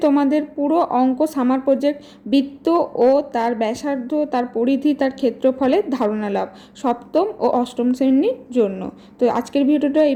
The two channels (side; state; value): both; identical; correlation 1.00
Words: তোমাদের পুরো অঙ্ক সামার প্রজেক্ট, বৃত্ত ও তার ব্যাসার্ধ, তার পরিধি, তার ক্ষেত্রফলের ধারণা লাভ, সপ্তম ও অষ্টম শ্রেণীর জন্য। তো আজকের ভিডিওটা